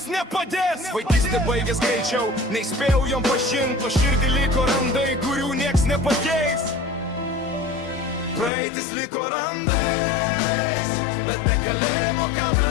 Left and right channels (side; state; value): right; drops out; at 8.5 s